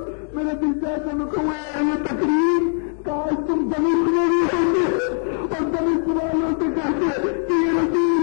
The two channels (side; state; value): right; silent; 61 dB below the other